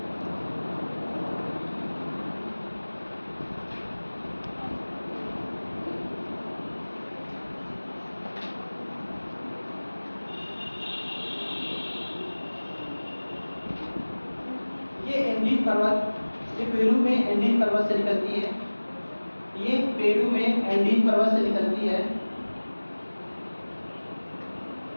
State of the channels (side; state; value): both; inverted; correlation -1.00